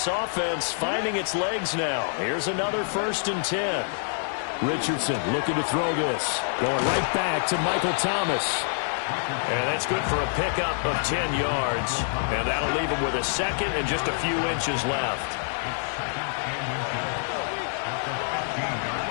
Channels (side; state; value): right; silent; 61 dB below the other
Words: offense finding its legs now. Here's another 1st and 10. Richardson looking to throw this. Going right back to Michael Thomas. And that's good for a pickup of 10 yards. And that'll leave him with a 2nd and just a few inches left.